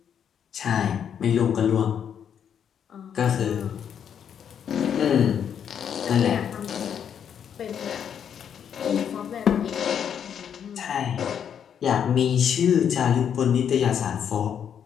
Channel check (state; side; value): quieter; right; 8.4 dB